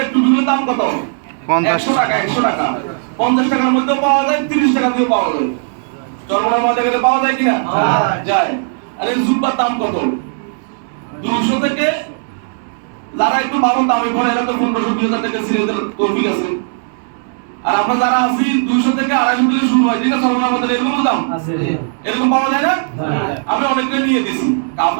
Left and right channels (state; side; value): silent; left; digital silence